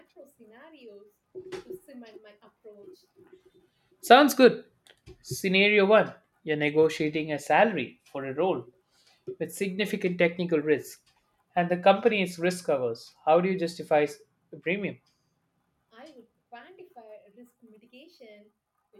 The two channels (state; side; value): identical; both; correlation 1.00